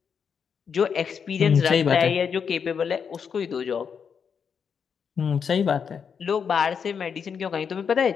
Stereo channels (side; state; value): right; quieter; 6.7 dB